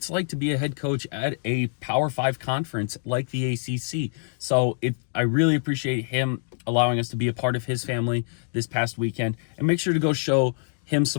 like to be a head coach at a Power 5 conference like the ACC. So I really appreciate him allowing us to be a part of his family this past weekend. And make sure to go show him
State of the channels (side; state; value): right; silent; digital silence